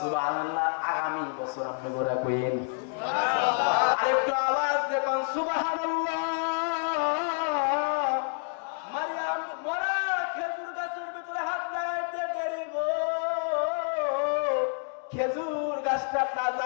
আগামী বছর আপনি গোরা কইন আরেকটু আওয়াজ দেখুন, সুবহানাল্লাহ। মারিয়াম মরা খেজুর গাছের ভিতরে হাত লাগাইতে দেরি গো, খেজুর গাছটা তাজা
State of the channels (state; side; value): silent; right; 57 dB below the other